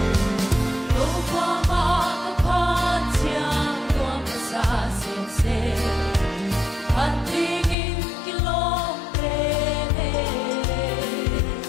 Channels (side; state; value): right; drops out; at 7.8 s